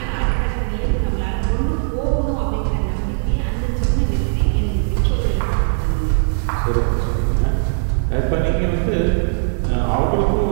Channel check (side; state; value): left; silent; digital silence